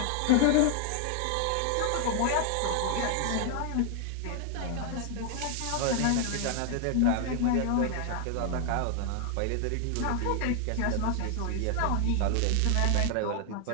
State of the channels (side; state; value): both; different; correlation 0.00